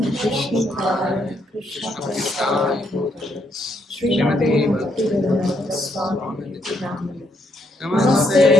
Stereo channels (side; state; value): both; normal; correlation 0.74